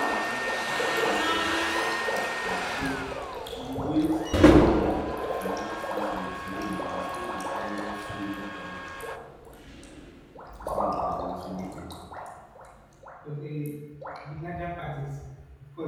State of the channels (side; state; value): both; identical; correlation 1.00